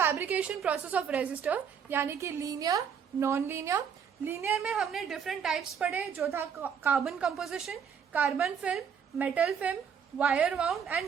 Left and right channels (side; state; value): left; quieter; 7.3 dB